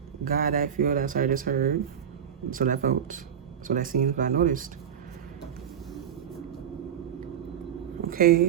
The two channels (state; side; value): quieter; left; 8.7 dB